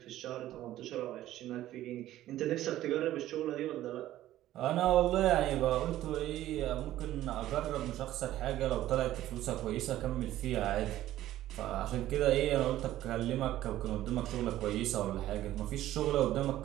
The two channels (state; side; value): quieter; left; 14.0 dB